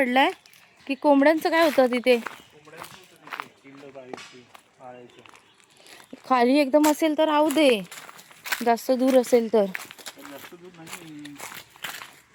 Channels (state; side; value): identical; both; correlation 1.00